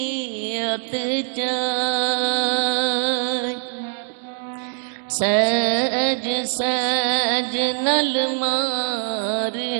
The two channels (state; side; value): silent; left; 64 dB below the other